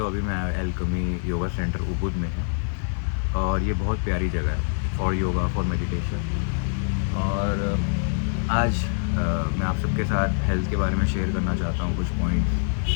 अभी मैं एल्केमी योगा सेंटर उबुद में है और ये बहुत प्यारी जगह है फॉर योगा फॉर मेडिटेशन। और आज मैं आप सबके साथ हेल्थ के बारे में शेयर करना चाहता हूँ कुछ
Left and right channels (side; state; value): right; silent; 57 dB below the other